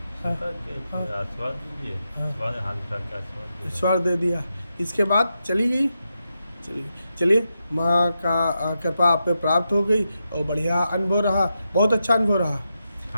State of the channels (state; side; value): inverted; both; correlation -0.87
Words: स्वीकार किए, हाँ, फिर आशीर्वाद दीजिए। हाँ। आशीर्वाद हाथ उठा के आशीर्वाद दीजिए। ईश्वर दे दिया। इसके बाद चली गई। चलिए, माँ का कृपा आप पे प्राप्त हो गई और बढ़िया अनुभव रहा, बहुत अच्छा अनुभव रहा।